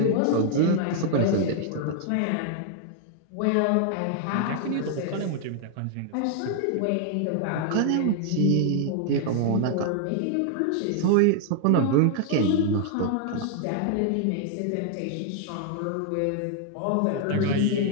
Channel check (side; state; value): both; different; correlation 0.00